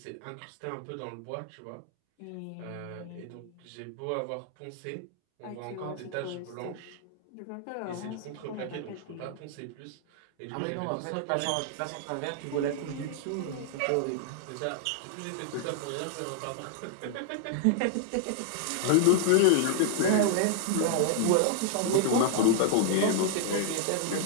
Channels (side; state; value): both; different; correlation 0.00